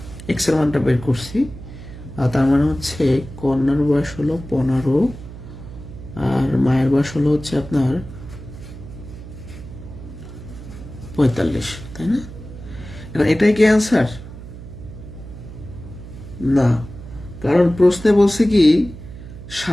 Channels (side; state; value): right; noise; hum, 14 dB below the sound